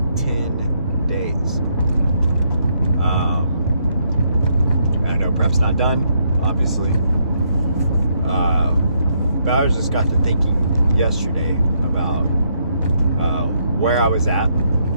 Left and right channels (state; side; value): inverted; both; correlation -0.74